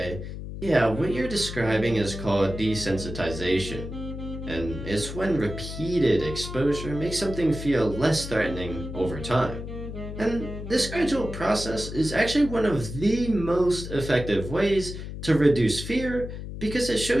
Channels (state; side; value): noise; left; hum, 8 dB below the sound